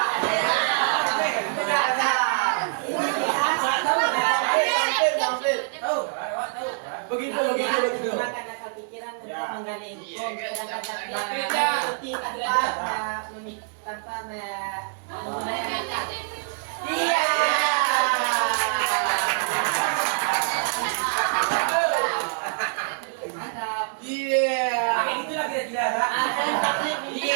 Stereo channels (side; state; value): left; silent; 62 dB below the other